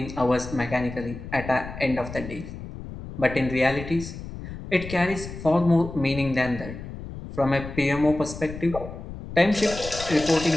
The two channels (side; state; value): left; noise; rumble, 11 dB below the sound